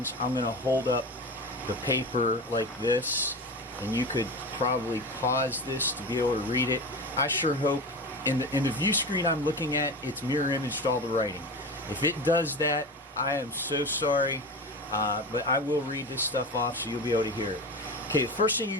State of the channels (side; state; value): both; normal; correlation 0.27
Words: I'm going to hold up the paper like this, and you could probably pause this to be able to read it. I sure hope in the view screen I'm looking at, it's mirror imaged all the writing. If it does that, I am so sorry, but I will read this stuff off so you'll be able to hear it. Okay, the first thing you're